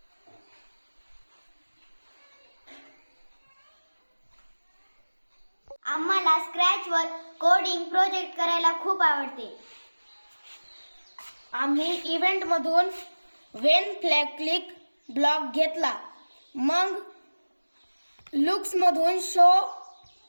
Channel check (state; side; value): inverted; both; correlation -1.00